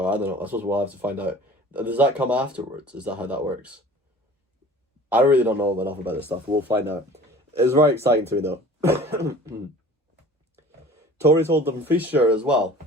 I don't know. I suppose we'll have to find out. Does that come afterwards? Is that how that works? I really don't know enough about this stuff. We'll find out. It's very exciting to me, though. Tories hold Dumfriesshire as well.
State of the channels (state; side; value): normal; both; correlation 0.45